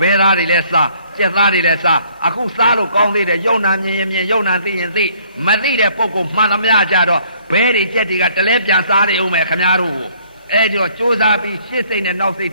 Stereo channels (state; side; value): inverted; both; correlation -0.61